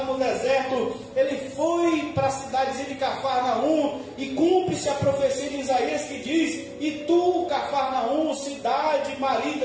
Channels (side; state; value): both; identical; correlation 1.00